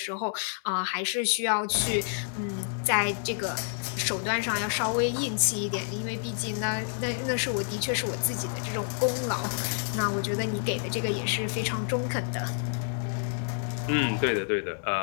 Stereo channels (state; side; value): silent; right; 59 dB below the other